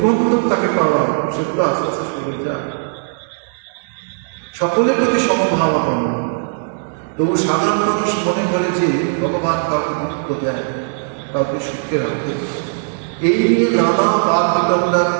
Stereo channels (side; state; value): left; silent; digital silence